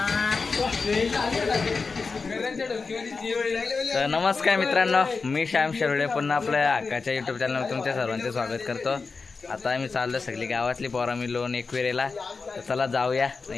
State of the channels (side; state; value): right; quieter; 4.5 dB